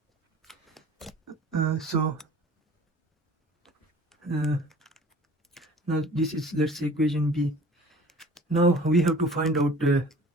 Now this is, let's say, equation B. Now we have to find out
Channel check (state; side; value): normal; both; correlation 0.47